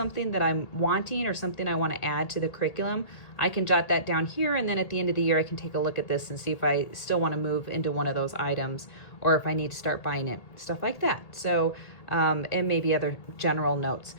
that I'm wanting, or something I want to add to the curriculum, I can jot that down here, and then at the end of the year I can take a look at this and see if I still want to move into one of those items, or if I need to start buying it, stuff like that. So and maybe other general notes.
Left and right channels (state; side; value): late; right; 1.7 ms